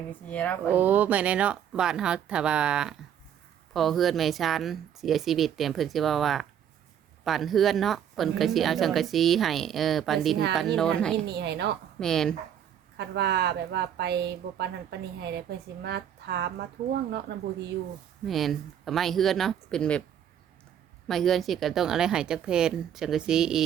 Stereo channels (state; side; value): quieter; left; 9.3 dB